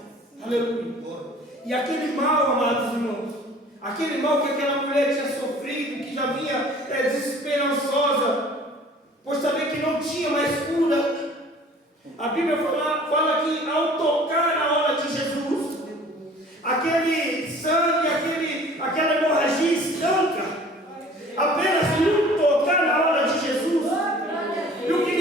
Aleluia. E aquele mal, amados irmãos, aquele mal que aquela mulher tinha sofrido, que já vinha desesperançosa, por saber que não tinha mais cura, a Bíblia fala que ao tocar na hora de Jesus, aquele sangue, aquela hemorragia estanca, apenas por tocar na hora de Jesus. E o que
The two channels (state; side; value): normal; both; correlation 0.49